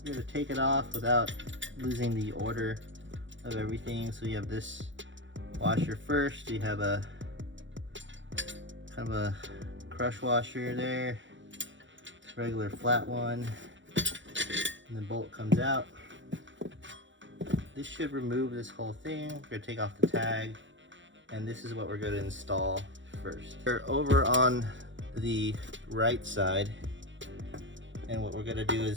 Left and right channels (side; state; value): left; late; 0.54 ms